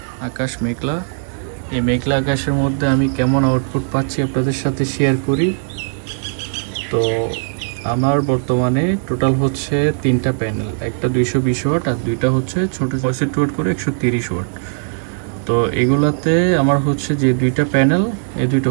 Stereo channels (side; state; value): left; silent; digital silence